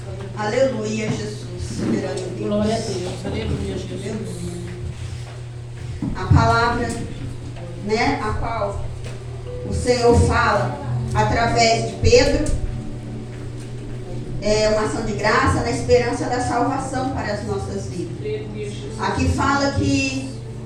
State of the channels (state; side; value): identical; both; correlation 1.00